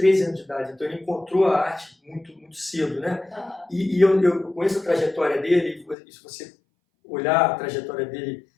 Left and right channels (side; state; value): right; drops out; at 6.0 s